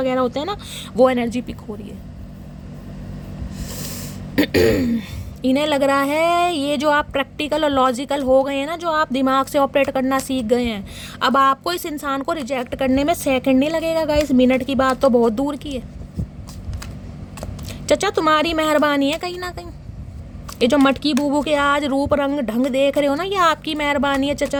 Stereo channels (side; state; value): both; identical; correlation 1.00